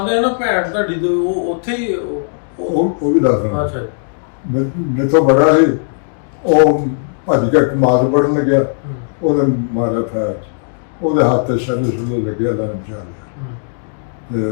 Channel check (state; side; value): silent; right; digital silence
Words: ਆ ਨਾ ਭੈਣ ਤੁਹਾਡੀ ਤੇ ਉਹ ਉੱਥੇ ਹੀ ਉਹ ਵੀ ਦੱਸਦਾ। ਅੱਛਾ ਜੀ। ਮੇਰੇ ਤੋਂ ਬੜਾ ਸੀ। ਉਹ ਭੱਜ ਕੇ ਮਾਰ ਪੜਨ ਲੱਗਿਆ। ਹੂੰ। ਉਹਦੇ ਮਾਰਿਆ ਫੈਰ ਉਹਦੇ ਹੱਥ ਤੇ ਛੱਲੇ ਲੱਗਿਆ ਲਾਂ ਚਾਲ। ਹੂੰ। ਤੇ